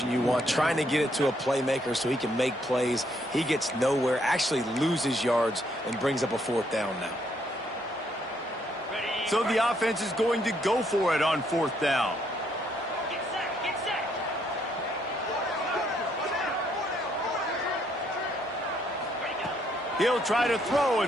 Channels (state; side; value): normal; both; correlation 0.71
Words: you want. Trying to get it to a playmaker so he can make plays. He gets nowhere, actually loses yards, and brings up a fourth down now. So the offense is going to go for it on fourth down. Get set, get set. He'll try to throw